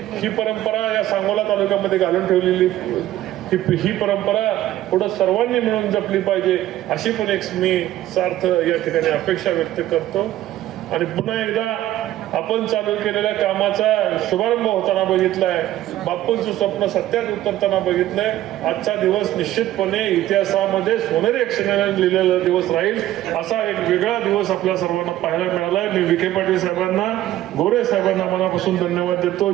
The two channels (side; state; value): left; quieter; 14.0 dB